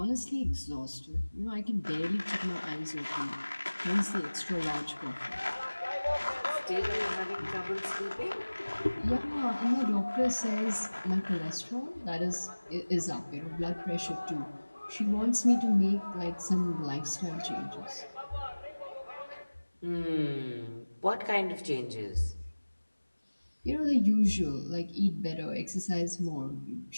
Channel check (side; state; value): both; inverted; correlation -1.00